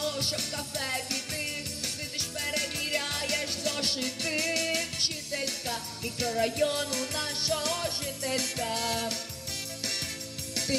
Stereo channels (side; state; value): both; identical; correlation 1.00